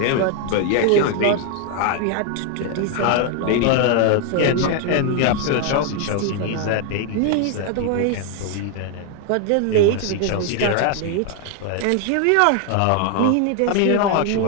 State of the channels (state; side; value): different; both; correlation 0.01